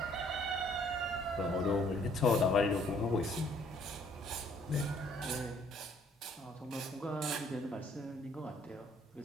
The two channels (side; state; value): both; normal; correlation 0.62